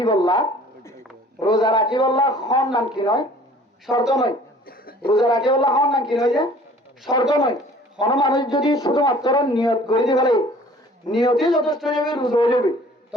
বললা খন নাম কি নয় শর্ত নয় রোজা রাখি বললা খন নাম কি নয় যে শর্ত নয় কোন মানুষ যদি শুধুমাত্র নিয়ত করে দিয়ে ফেলে নিয়তই যথেষ্ট হয়ে যাবে রোজা হয়ে যাবে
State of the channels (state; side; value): normal; both; correlation 0.51